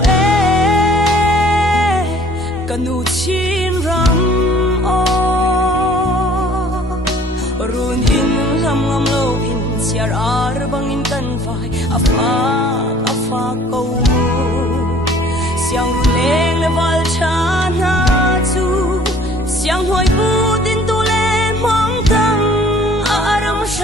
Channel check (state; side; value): normal; both; correlation 0.54